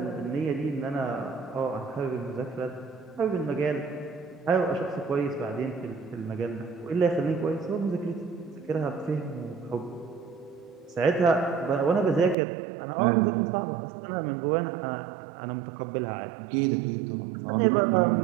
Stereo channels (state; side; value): drops out; left; at 12.4 s